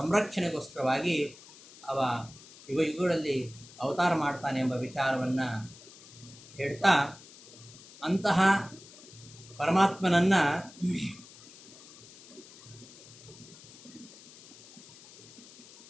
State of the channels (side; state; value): left; noise; hiss, 20 dB below the sound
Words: ಅವ ಯುಗಗಳಲ್ಲಿ ಅವತಾರ ಮಾಡ್ತಾನೆ ಎಂಬ ವಿಚಾರವನ್ನು ಹೇಳ್ತಾ ಅಂತಹ ಪರಮಾತ್ಮನನ್ನು